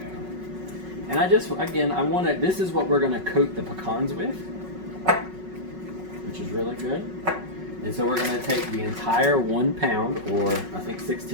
And I just, again, I want to, this is what we're going to coat the pecans with, which is really good. And so we're going to take the entire 1 pound, or I think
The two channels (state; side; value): late; left; 5.4 ms